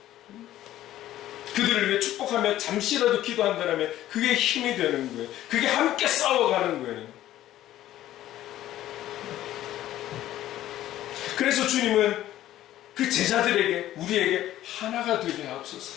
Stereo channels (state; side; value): quieter; right; 13.5 dB